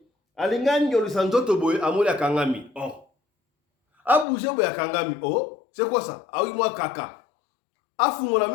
allez du santo boy, amoli à Kangami. Oh. A bougé boy à Kangami. Oh. C'est quoi ça? Ah oui, moi, kaka. A fungona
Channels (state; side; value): drops out; right; at 4.2 s